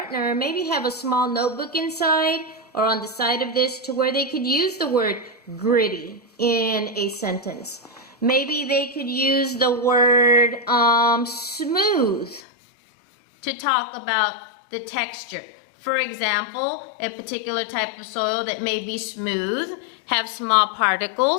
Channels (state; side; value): drops out; right; at 12.4 s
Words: maybe have a small notebook inside or on the side of this to where they could use the word gritty in a sentence. Maybe they could use the word smooth to talk about the texture. For example, a particular type of soil that may be smooth, have small